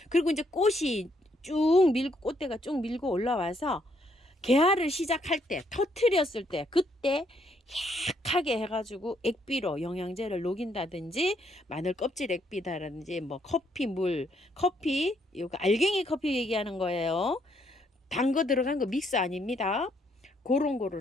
그리고 이제 꽃이 쭉 밀고 꽃대가 쭉 밀고 올라와서 개화를 시작할 때 터트렸을 때 그때 약하게 해가지고 액비로 영양제를 녹인다든지 마늘 껍질 액비다든지 뭐 커피 이거 알갱이 커피 얘기하는 거예요. 단 거 들어간 거 믹스 아닙니다. 그런 거를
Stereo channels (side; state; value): both; normal; correlation 0.72